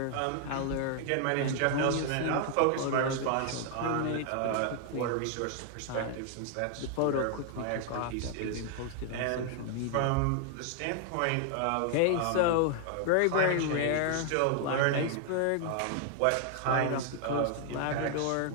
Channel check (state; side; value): different; both; correlation 0.00